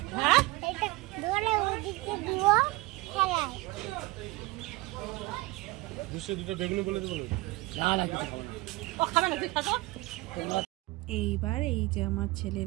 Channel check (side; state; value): left; quieter; 20.5 dB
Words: এইবার এই যে আমার